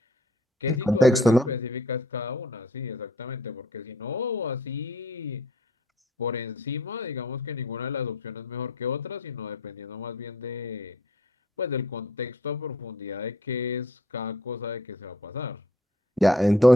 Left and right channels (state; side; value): normal; both; correlation 0.59